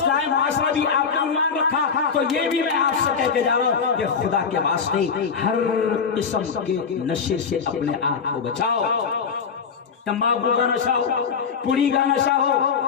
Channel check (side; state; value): right; quieter; 6.0 dB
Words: معاشرہ بھی آپ نے عنوان رکھا, تو یہ بھی میں آپ سے کہہ کے جا رہا ہوں کہ خدا کے واسطے ہر قسم کے نشے سے اپنے آپ کو بچاؤ. تمباکو کا نشہ ہو, پوڑی کا نشہ ہو,